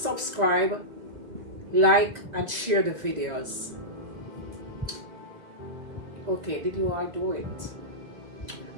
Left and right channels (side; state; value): left; late; 2.2 ms